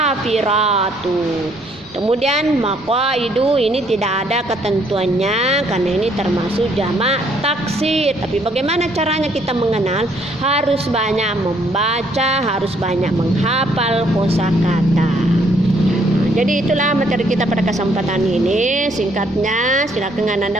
Kemudian maqaidu ini tidak ada ketentuannya karena ini termasuk jamak taksir. Tapi bagaimana caranya kita mengenal? Harus banyak membaca, harus banyak menghafal kosakata. Jadi itulah materi kita pada kesempatan ini. Singkatnya silakan Anda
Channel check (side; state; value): both; normal; correlation 0.67